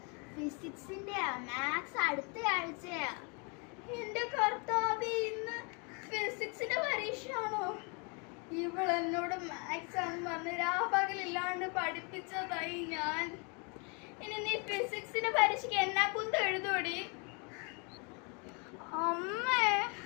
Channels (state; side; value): quieter; right; 34.0 dB